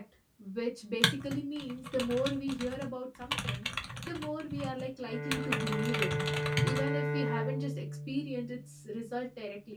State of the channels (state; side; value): identical; both; correlation 1.00